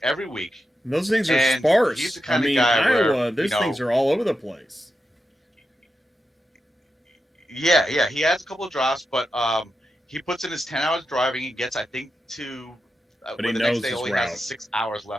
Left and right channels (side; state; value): both; normal; correlation 0.88